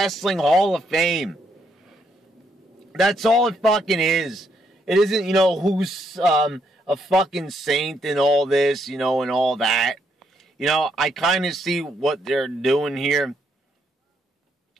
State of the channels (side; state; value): both; normal; correlation 0.74